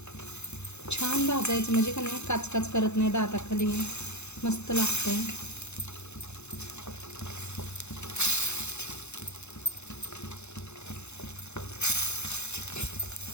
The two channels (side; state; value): right; late; 0.81 ms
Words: छान भाजायचं म्हणजे का नाही काचकाच करत नाही, दाताखाली मस्त लागतंय।